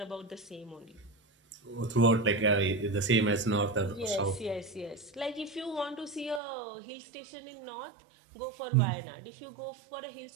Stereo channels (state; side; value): drops out; left; at 6.4 s